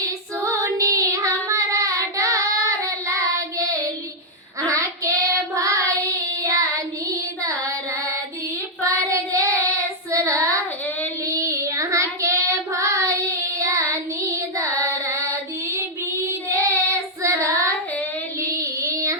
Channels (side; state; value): both; normal; correlation -0.03